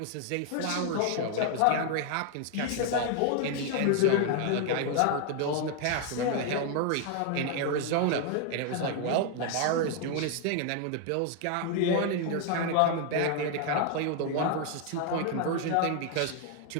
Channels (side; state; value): both; different; correlation 0.00